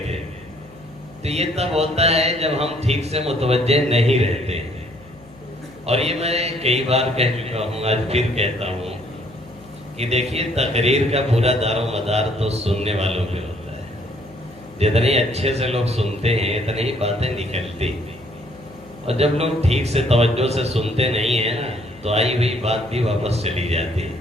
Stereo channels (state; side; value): noise; left; hum, 24 dB below the sound